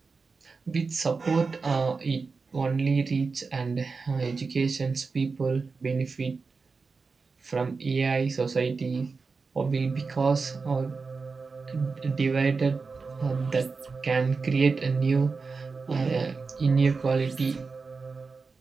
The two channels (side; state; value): left; quieter; 4.5 dB